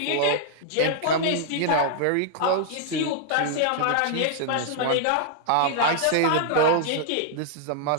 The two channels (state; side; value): different; both; correlation -0.01